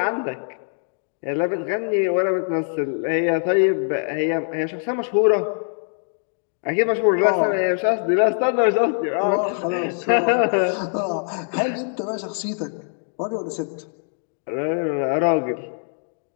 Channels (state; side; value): silent; right; digital silence